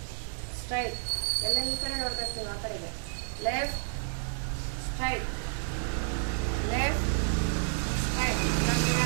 straight. ಎಲ್ಲ ಈ ಕಡೆ ನೋಡ್ಬೇಕು ನೀವು. ಆ ಕಡೆಗೆ left straight left straight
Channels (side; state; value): left; silent; digital silence